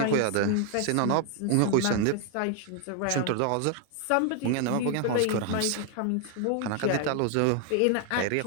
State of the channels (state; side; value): different; both; correlation 0.00